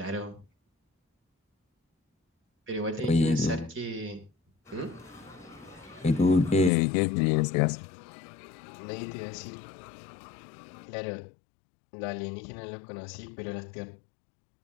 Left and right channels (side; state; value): right; drops out; at 6.7 s